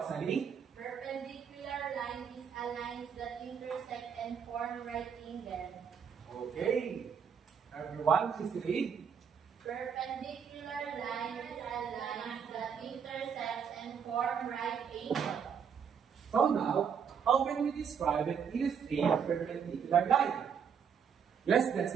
Perpendicular line is a line that intersect and form right angle. Okay. Everyone, please read. Perpendicular line is a line that intersects and form right angle. So now, how can we describe and illustrate a perpendicular line? Yes,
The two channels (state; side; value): quieter; left; 7.2 dB